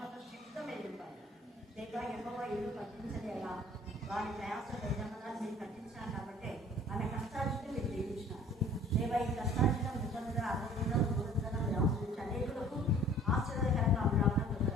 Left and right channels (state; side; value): normal; both; correlation 0.51